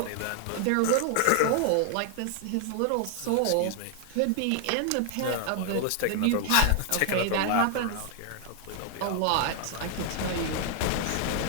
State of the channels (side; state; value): both; different; correlation 0.00